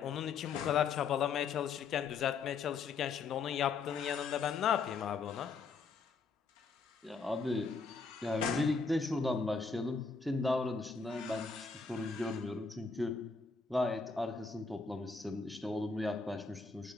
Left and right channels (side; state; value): right; quieter; 4.8 dB